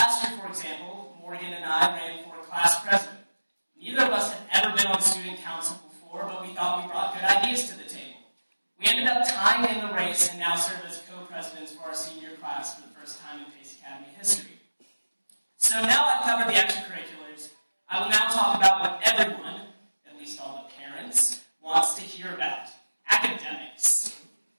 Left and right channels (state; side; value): inverted; both; correlation -1.00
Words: for example, Morgan and I ran for class president. Neither of us had ever been on student council before, but we thought we brought good ideas to the table. We We ended up tying in the race and now serve as co-presidents for our senior class for the first time in Pace Academy history. So now I've covered the extracurriculars, I will now talk about what everyone, at least all the parents, wants to hear about: academics.